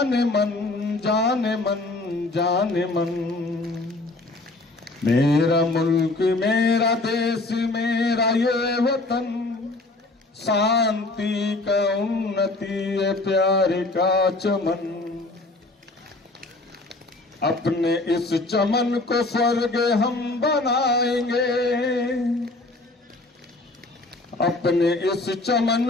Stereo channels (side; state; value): right; quieter; 3.0 dB